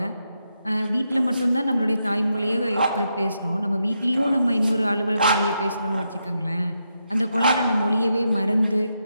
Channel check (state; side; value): inverted; both; correlation -0.83